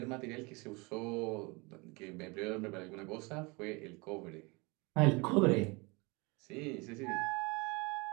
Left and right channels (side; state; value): left; quieter; 27.3 dB